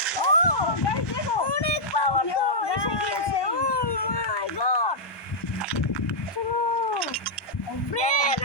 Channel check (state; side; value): late; right; 1.2 ms